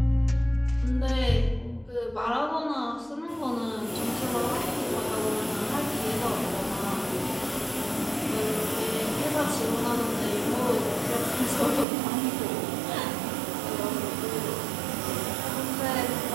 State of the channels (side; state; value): left; drops out; at 11.9 s